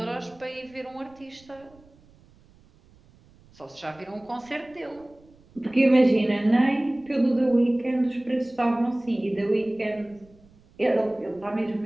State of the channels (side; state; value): right; noise; rumble, 28 dB below the sound